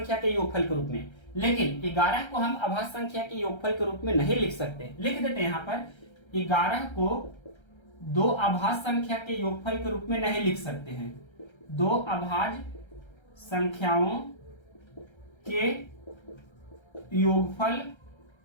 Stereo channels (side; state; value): right; late; 1.3 ms